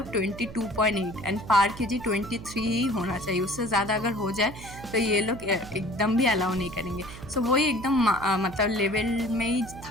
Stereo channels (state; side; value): noise; right; hum, 14 dB below the sound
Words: 22.8 एंड पार kg 23 ही होना चाहिए। उससे ज़्यादा अगर हो जाए तो ये लोग एकदम भी अलाउ नहीं करेंगे। सो वही एकदम मतलब लेवल में ही